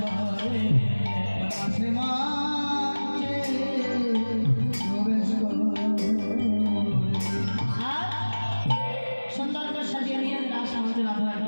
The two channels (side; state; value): both; inverted; correlation -1.00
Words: করে, রাসমঞ্চে প্রবেশ করে। আর সুন্দর করে সাজিয়ে নিয়ে রাসমঞ্চে